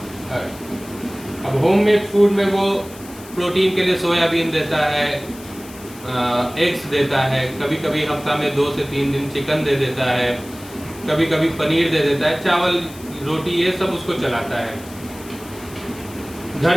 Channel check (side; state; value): left; noise; hiss, 19 dB below the sound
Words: अब होममेड फूड में वो प्रोटीन के लिए सोयाबीन देता है, एग्स देता है, कभी कभी हफ्ता में 2 से 3 दिन चिकन दे देता है, कभी कभी पनीर दे देता है, चावल रोटी ये सब उसको चलाता है। घर